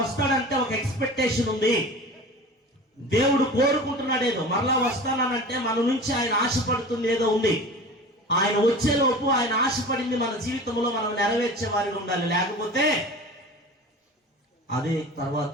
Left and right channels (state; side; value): normal; both; correlation 0.37